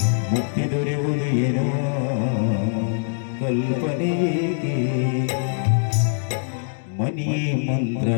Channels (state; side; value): silent; right; digital silence